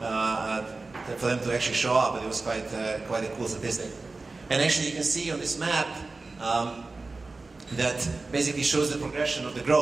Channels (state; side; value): quieter; left; 3.6 dB